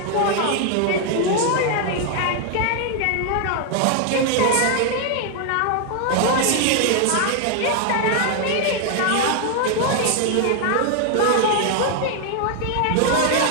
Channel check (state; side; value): different; both; correlation 0.00